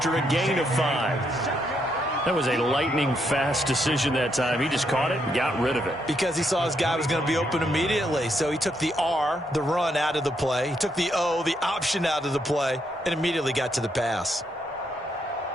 a gain of 5. That was a lightning-fast decision that time. He just caught it and got rid of it. Because he saw his guy was going to be open immediately. So he took the R, the run, out of the play. He took the O, the option, out of the play, and immediately got to the pass.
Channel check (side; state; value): both; normal; correlation 0.77